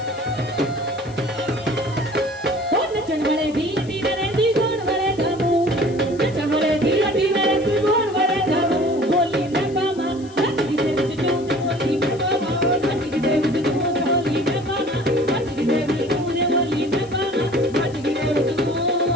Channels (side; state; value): left; noise; hiss, 24 dB below the sound